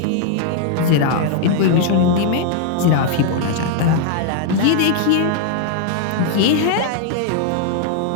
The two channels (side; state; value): both; different; correlation 0.00